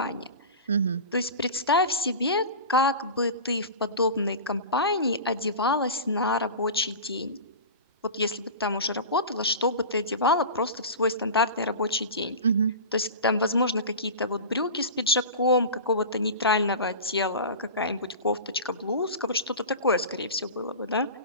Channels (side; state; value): both; inverted; correlation -0.31